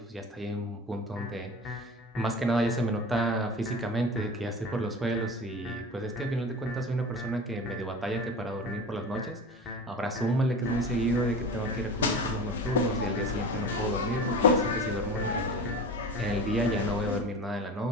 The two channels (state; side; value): normal; both; correlation 0.32